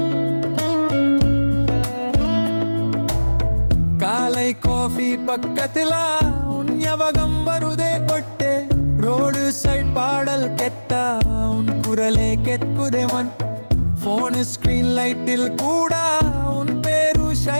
காலை காஃபி பக்கத்துல உன் ஞாபகம் வருதே கொட்டே ரோடு சைட் பாடல் கெட்டா உன் குரலே கெட்குதேவன் போன் ஸ்கிரீன் லைட்டில் கூட உன் பேரு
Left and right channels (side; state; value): both; inverted; correlation -1.00